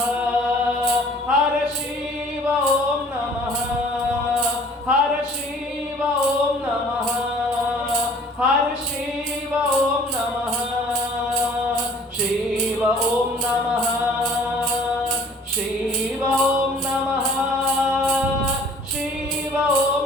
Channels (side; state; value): both; normal; correlation 0.52